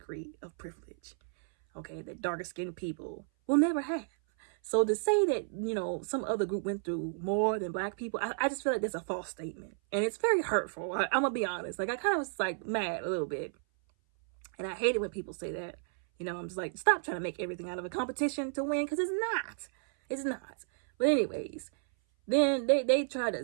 of privilege, okay, that darker skinned people will never have. So to say that, some other group went through more than black people, I just feel like that's a false statement. And it's very hurtful. I'm going to be honest. Like, I kind of was like mad a little bit. And I hate it when people say that. I'm just like, stop trying to make everything out of a competition to win, because it's not. It's not. But anyways, then they try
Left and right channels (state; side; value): silent; left; 56 dB below the other